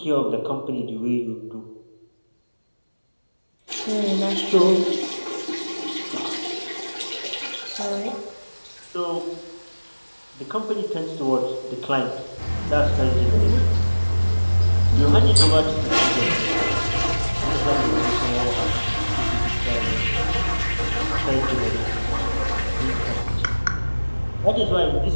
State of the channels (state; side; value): inverted; both; correlation -1.00